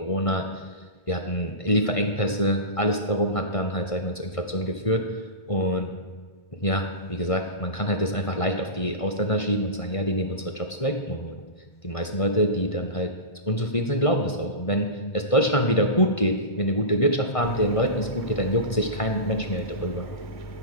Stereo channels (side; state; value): right; late; 1.6 ms